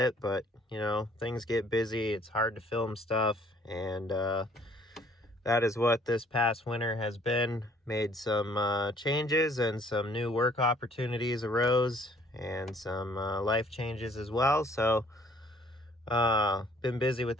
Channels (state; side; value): normal; both; correlation 0.60